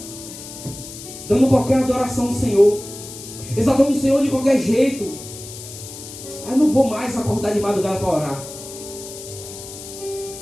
dando qualquer adoração ao Senhor, exaltando o Senhor de qualquer jeito. Eu não vou mais acordar de madrugada para orar.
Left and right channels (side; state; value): left; noise; hiss, 13 dB below the sound